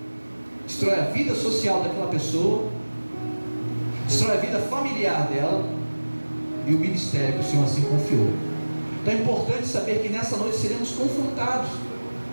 destrói a vida social daquela pessoa, destrói a vida familiar dela e o ministério que o Senhor assim confiou. Então é importante saber que nessa noite seremos confrontados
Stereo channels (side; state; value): both; inverted; correlation -1.00